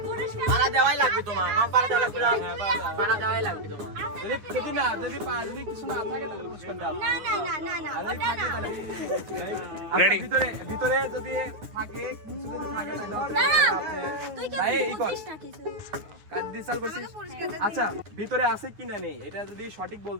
পুরস্কার পারা দেওয়াই লাগবে তোমার, না পারা দেওয়া লাগবে না, পারা দেওয়াই লাগবে তোমার। যদি কিছু না থাকে তাহলে পুরস্কার দাও। না না না না না ওটা না Ready? ভিতরে যদি থাকে কিছু যদি থাকে তাহলে না, আপনি তুই কি ভাই এই কর বুঝিস না কিছু কার্ড ডিসাল করছিস। আচ্ছা ভিতরে আছে কিনা নেই এটা যদি সঠিক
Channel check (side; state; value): left; late; 9.8 ms